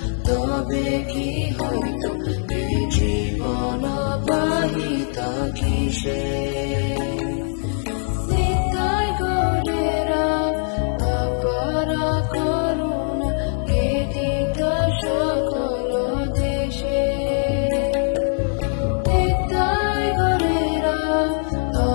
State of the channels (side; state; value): right; silent; 58 dB below the other